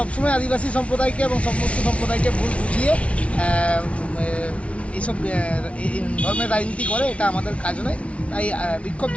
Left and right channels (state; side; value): late; right; 0.062 ms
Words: আদিবাসী সম্প্রদায়কে এবং সমস্ত সম্প্রদায়কে ভুল বুঝিয়ে এইসব ধর্মের রাজনীতি করে, এটা আমাদের কাজ নয়। তাই বিক্ষোভ